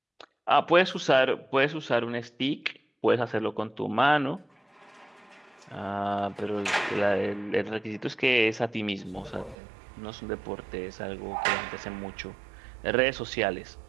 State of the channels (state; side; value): drops out; left; at 9.6 s